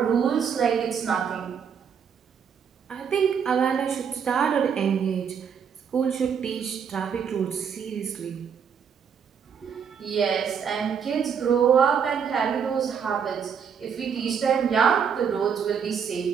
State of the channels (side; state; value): left; quieter; 7.1 dB